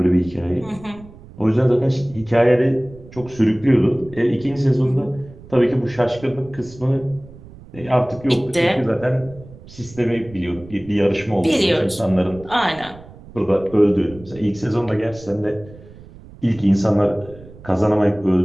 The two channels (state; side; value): noise; right; rumble, 20 dB below the sound